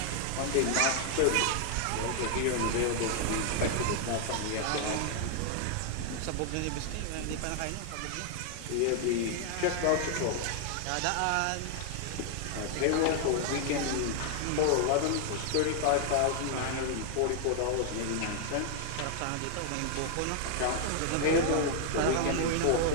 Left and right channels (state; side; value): different; both; correlation 0.00